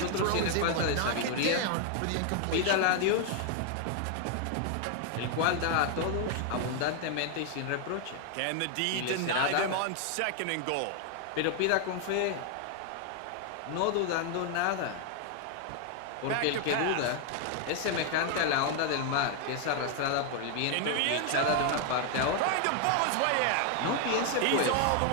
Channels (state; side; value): different; both; correlation 0.00